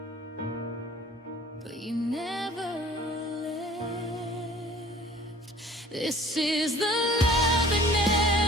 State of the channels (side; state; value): both; normal; correlation 0.50